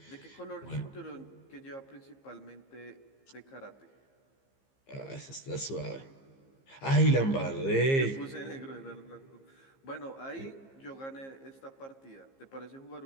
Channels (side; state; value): right; late; 15 ms